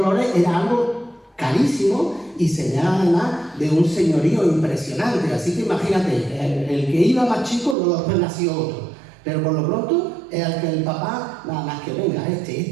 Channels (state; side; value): drops out; left; at 7.8 s